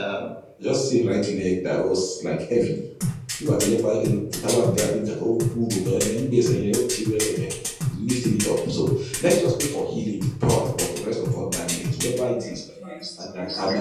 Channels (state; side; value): identical; both; correlation 1.00